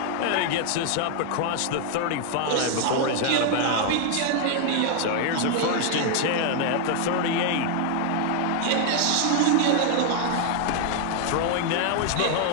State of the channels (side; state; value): both; different; correlation 0.00